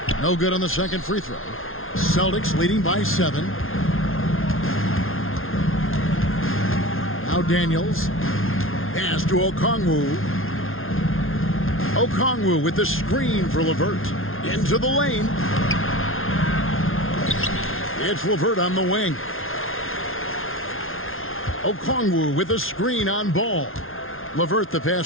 No good on the second free throw. Celtics leading by 7. Now Daniels. Pass to Okongwu. Okongwu with the screen for LeVert. Into the lane. It's LeVert on the wing. Okongwu with a screen on Ball. LeVert the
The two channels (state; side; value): late; right; 0.60 ms